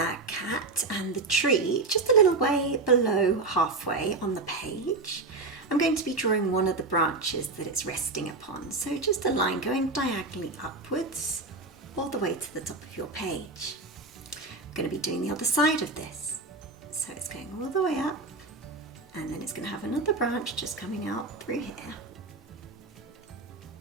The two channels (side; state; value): left; quieter; 3.5 dB